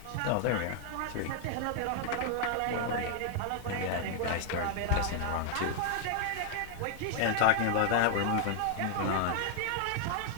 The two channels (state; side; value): different; both; correlation 0.00